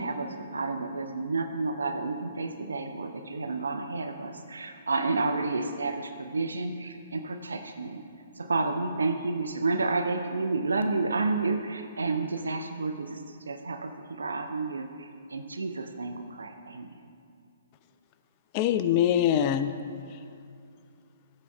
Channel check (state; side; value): inverted; both; correlation -0.61